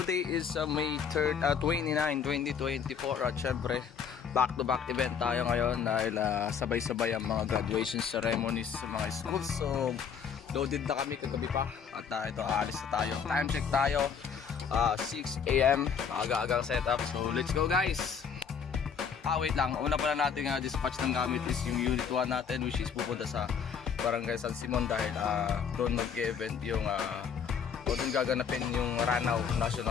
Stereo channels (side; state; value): right; quieter; 6.9 dB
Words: is May 3rd, 29, 2024 at syempre back to back event tayo ngayon dahil sabay-sabay ang mga graduation ceremonies sa mga schools. So loaded na kami kagabi pa at ito aalis na tayo. Time check tayo, 6 AM, aga-agang setup. So let's go guys. Wait lang, una pala natin dispatch ng gamit is yung unit 1 natin, which is pupunta sa Barangay San Simon dahil doon mag-event yung o doon gaganapin yung Ranao